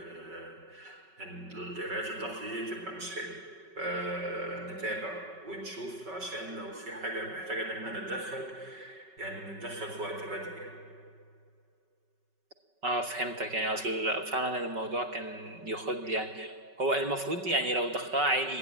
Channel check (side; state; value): left; late; 5.3 ms